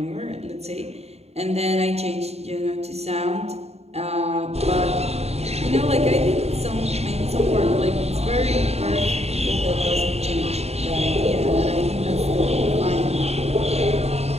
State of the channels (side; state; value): left; late; 0.30 ms